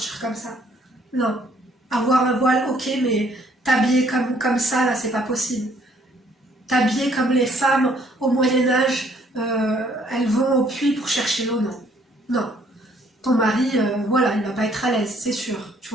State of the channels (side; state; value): both; normal; correlation 0.64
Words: comme ça. Non. Avoir un voile, ok, mais t'habiller comme ça, là, c'est pas possible. T'habiller comme les femmes au Moyen-Âge, elles vont au puits pour chercher l'eau, non. Non. Ton mari, voilà, il va pas être à l'aise, c'est sûr, tu